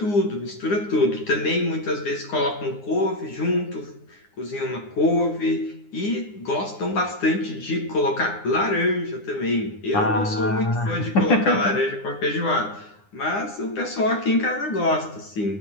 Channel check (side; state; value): right; late; 9.8 ms